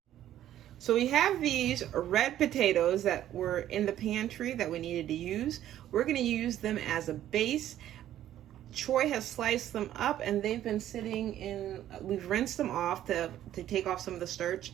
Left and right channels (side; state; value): left; quieter; 12.2 dB